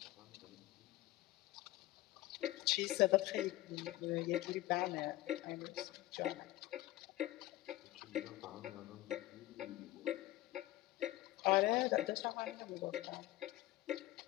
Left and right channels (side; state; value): right; quieter; 16.9 dB